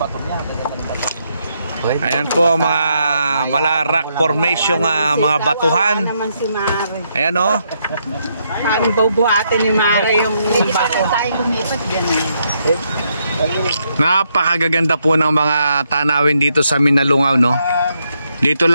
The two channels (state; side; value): inverted; both; correlation -0.77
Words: niya. Ng bato. Ayan po ang mga mala rock formation, mga batuhan. Naman si Mare. Ayan o. Paano bubuhatin ni Mare yung bato? Tayo lumipat gano'n. Napakagaganda po ng mga tanawin dito sa Minalungaw, no? Dito